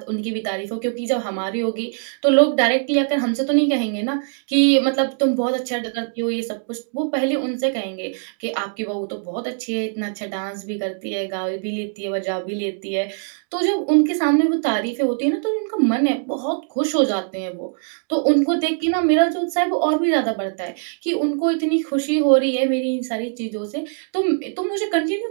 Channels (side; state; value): left; silent; digital silence